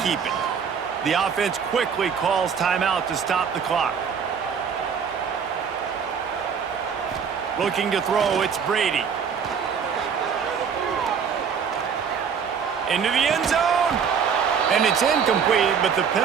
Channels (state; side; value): quieter; left; 6.8 dB